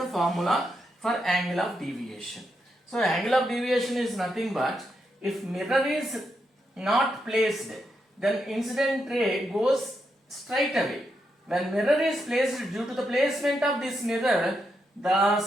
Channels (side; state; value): both; normal; correlation 0.83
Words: formula for angle of deviation. So angle of deviation is nothing but, if mirror is not placed, then incident ray goes straight away. When mirror is placed, due to the placement of this mirror,